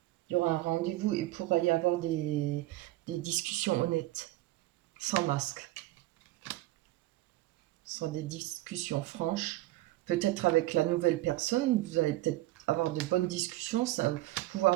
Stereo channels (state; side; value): quieter; left; 17.5 dB